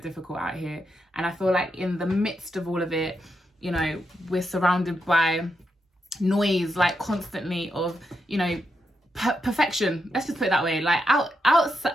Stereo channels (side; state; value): both; normal; correlation 0.83